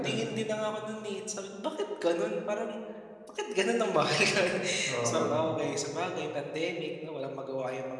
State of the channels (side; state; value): both; identical; correlation 1.00